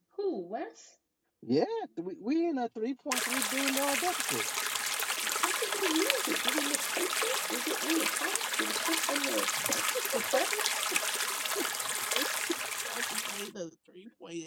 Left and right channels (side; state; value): both; identical; correlation 1.00